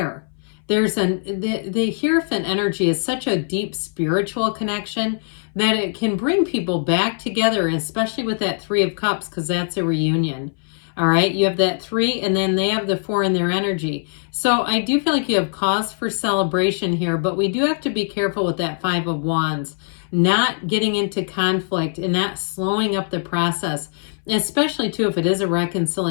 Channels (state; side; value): silent; right; 63 dB below the other